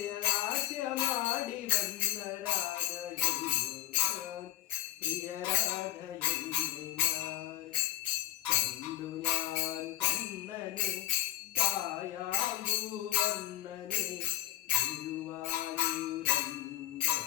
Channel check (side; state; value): right; quieter; 14.7 dB